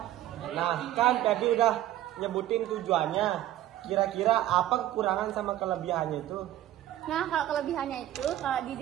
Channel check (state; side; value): quieter; left; 13.6 dB